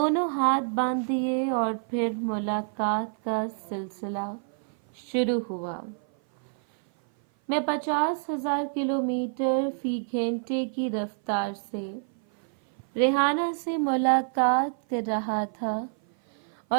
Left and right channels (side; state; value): left; silent; 56 dB below the other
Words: ہاتھ باندھ دیے اور پھر ملاقات کا سلسلہ شروع ہوا۔ میں 50,000 کلومیٹر فی گھنٹے کی رفتار سے ریحانہ سے ملاقات کر رہا تھا،